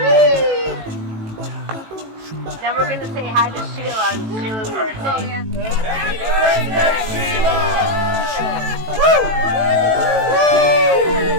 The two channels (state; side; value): late; left; 18 ms